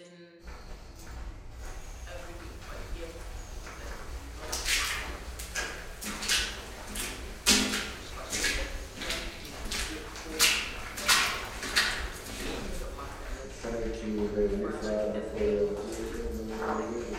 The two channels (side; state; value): both; identical; correlation 1.00